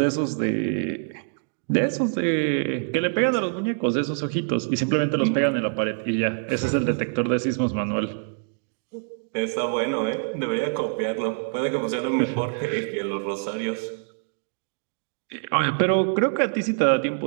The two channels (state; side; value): silent; left; digital silence